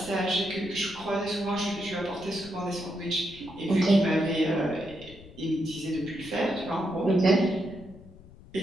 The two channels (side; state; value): left; noise; rumble, 20 dB below the sound